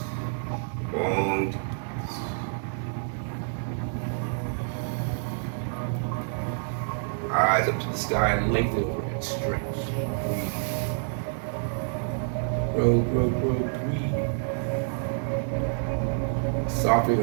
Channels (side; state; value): left; silent; digital silence